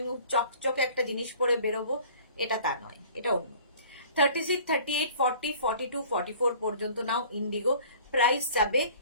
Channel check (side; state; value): both; inverted; correlation -0.49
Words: চকচকে একটা জিনিস পরে বেরোবো, এটা তা নয়, এটা অন্য। 36, 38, 40, 42, 44 পর্যন্ত নাও ইন্ডিগো। প্রাইস যাবে